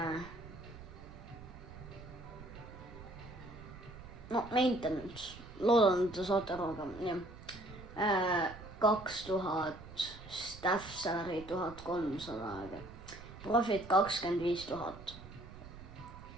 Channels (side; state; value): right; noise; rumble, 15 dB below the sound